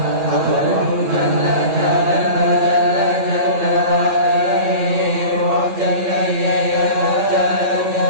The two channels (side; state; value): left; late; 9.1 ms